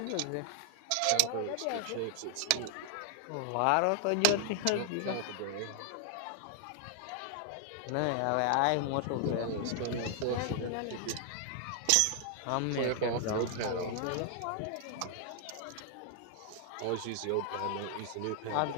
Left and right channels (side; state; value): both; different; correlation 0.00